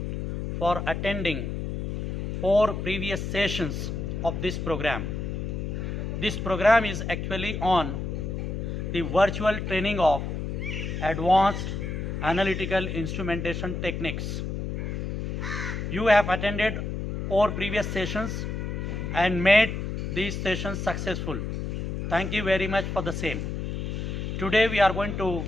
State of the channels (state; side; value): noise; left; hum, 3 dB below the sound